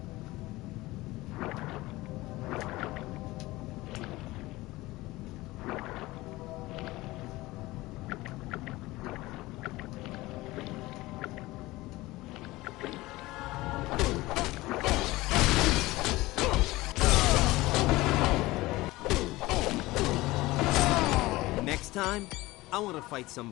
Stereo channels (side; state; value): right; quieter; 19.5 dB